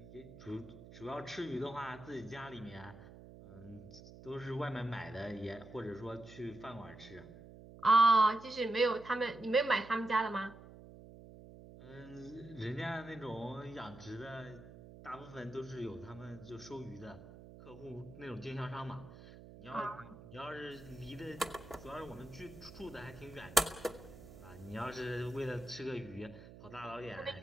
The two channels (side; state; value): right; noise; hum, 16 dB below the sound